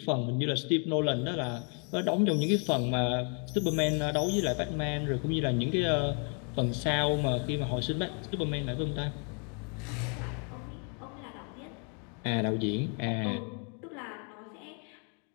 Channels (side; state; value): right; quieter; 39.8 dB